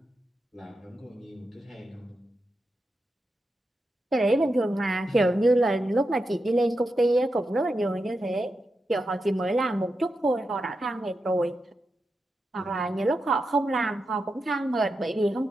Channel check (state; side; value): normal; both; correlation 0.88